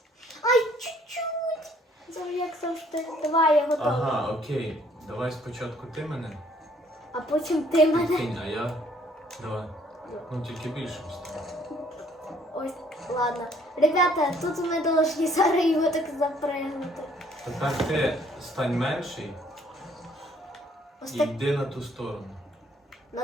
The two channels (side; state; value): both; normal; correlation 0.62